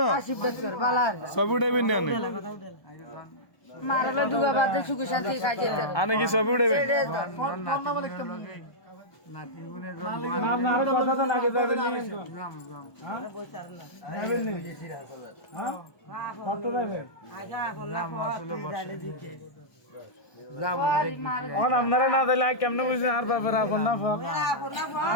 না ছবি উঠাইবেন না মারালে দুগা বাদে সুখ শান্তি খাই যেতে আমি কি ছবি উঠাইবেন নাম না আর কথা তো লাগে যাবেন নি যাবেন নি হ্যাঁ কত যাবেন এখন আপনারা না দিলে কেমনে বুঝছেন আর ব্যাপারে আপন না ফক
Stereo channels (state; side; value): late; right; 1.2 ms